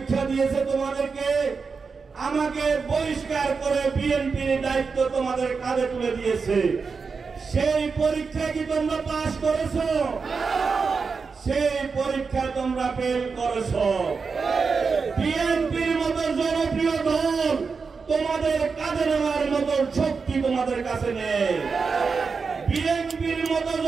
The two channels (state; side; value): quieter; left; 5.0 dB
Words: দিয়েছে তোমাদেরকে, আমাকে বহিষ্কার করে বিএনপির দায়িত্ব তোমাদের কাঁধে তুলে দিয়েছে। সেই পরীক্ষা কি তোমরা পাস করেছো? সেই পরীক্ষায় তোমরা ফেল করেছো। বিএনপির মতো জনপ্রিয় দল তোমাদের কাঁধে নেওয়ার মতো শক্তি তোমাদের কাছে নেই। বিএনপির মতো